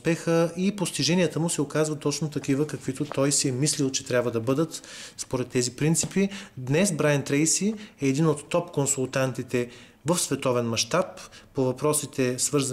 и постиженията му се оказват точно такива, каквито той си е мислил, че трябва да бъдат според тези принципи. Днес Брайан Трейси е един от топ консултантите в световен мащаб по въпросите,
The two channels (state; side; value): identical; both; correlation 1.00